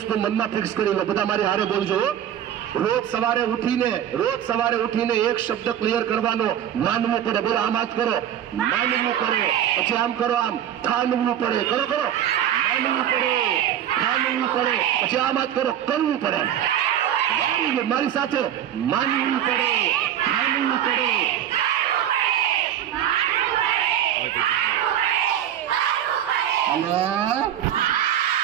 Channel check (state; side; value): quieter; left; 10.5 dB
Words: મનમાં ફિક્સ કરી લો. બધા મારી હારે બોલજો. રોજ સવારે ઉઠીને એક શબ્દ ક્લિયર કરવાનો, માનવું પડે. બોલો આમ હાથ કરો, માનવું પડે. પછી આમ કરો, આમ ઠાનવું પડે. કરો માનવું પડે, ઠાનવું પડે. પછી આમ હાથ કરો, કરવું પડે. મારી સાથે માનવું પડે, ઠાનવું પડે.